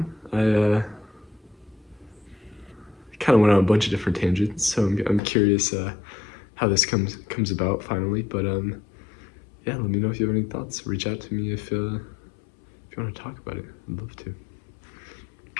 I kind of went on a bunch of different tangents, so I'm curious how this comes about finally. But yeah, let me know if you have any thoughts. Reach out to me if you want to talk about it. I'd love to.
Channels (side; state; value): right; drops out; at 5.2 s